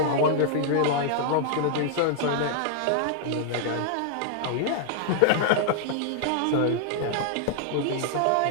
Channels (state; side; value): different; both; correlation -0.01